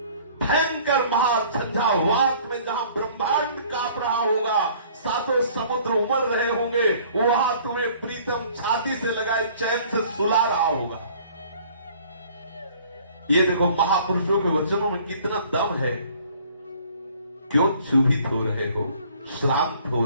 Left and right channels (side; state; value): both; inverted; correlation -0.54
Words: भयंकर महाझंझावात में जहां ब्रह्मांड कांप रहा होगा, 7 समुद्र उमड़ रहे होंगे, वहां तुम्हें प्रीतम छाती से लगाए चैन से सुला रहा होगा। ये देखो महापुरुषों के वचनों में कितना दम है। क्यों क्षुभित हो रहे हो, श्रांत हो